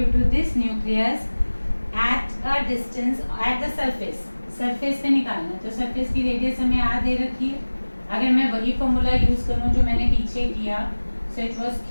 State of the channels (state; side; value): inverted; both; correlation -1.00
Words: to this nucleus at a distance at the surface. Surface पे निकालना, तो surface की radius हमें R दे रखी है। अगर मैं वही फॉर्मूला यूज करूँ जो मैंने पीछे किया, so it was